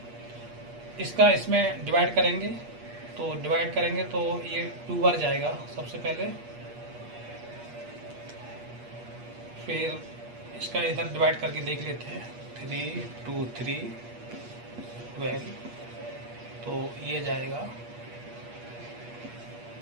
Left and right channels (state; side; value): late; left; 8.4 ms